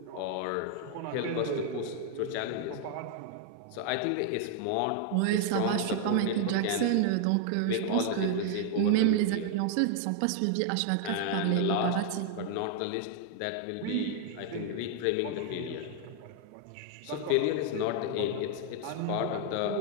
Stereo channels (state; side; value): different; both; correlation 0.00